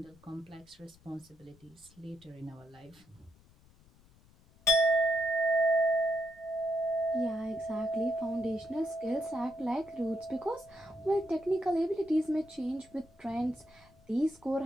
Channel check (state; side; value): noise; left; rumble, 28 dB below the sound